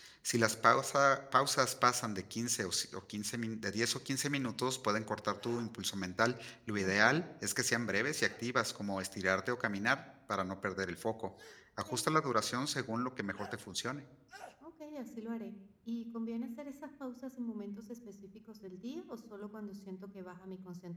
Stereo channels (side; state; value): both; identical; correlation 1.00